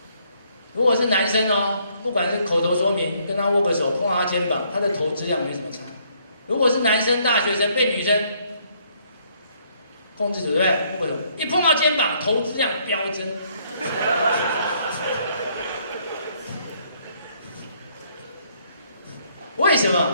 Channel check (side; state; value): both; inverted; correlation -0.67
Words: 如果是男生哦，不管是口头说明，跟他握个手，碰到他肩膀，他的投资量没什么差。如果是男生大学生被女生控制住，对不对？握个手，一碰到肩膀，投资量飙增。为什